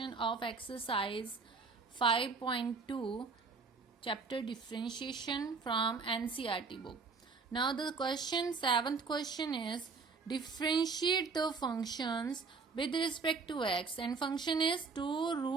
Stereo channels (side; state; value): left; quieter; 4.6 dB